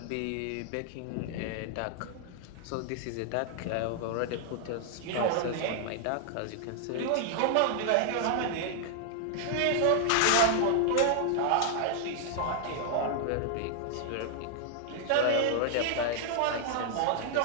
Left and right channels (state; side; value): different; both; correlation 0.00